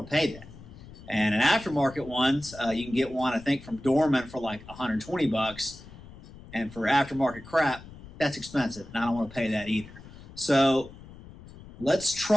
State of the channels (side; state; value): left; noise; rumble, 18 dB below the sound